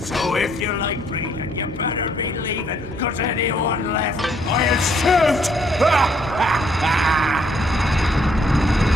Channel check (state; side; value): normal; both; correlation 0.67